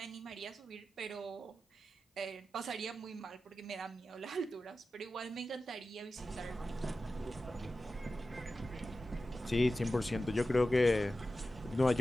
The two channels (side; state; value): both; normal; correlation 0.93